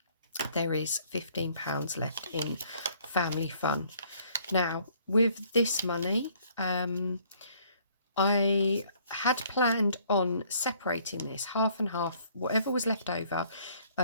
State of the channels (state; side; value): inverted; both; correlation -0.61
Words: there is £15 left in family fun. Now with this money, I had planned on separating this half and half. Whatever was left over